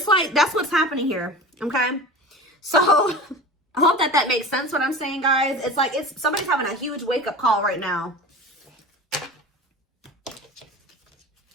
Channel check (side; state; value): both; normal; correlation 0.35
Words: like, that's what's happening here. Okay. So I hope that makes sense what I'm saying, guys. It's like somebody's having a huge wake-up call right now.